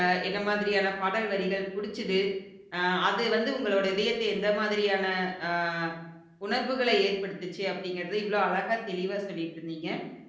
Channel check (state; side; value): identical; both; correlation 1.00